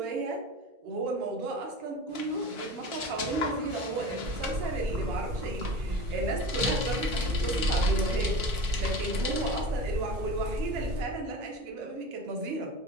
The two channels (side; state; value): left; late; 1.4 ms